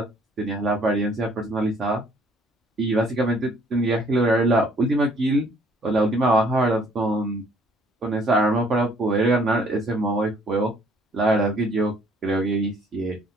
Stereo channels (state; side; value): normal; both; correlation 0.60